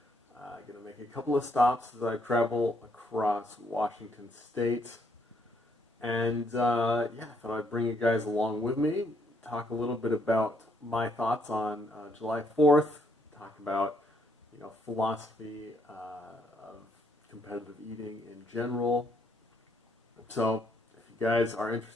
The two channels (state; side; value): normal; both; correlation 0.72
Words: I'm going to make a couple of stops as I travel across Washington State. And I thought I'd bring you guys along with me, talk a little bit about my thoughts on July 4th, talk about philosophy of competitive eating in general. So if you guys are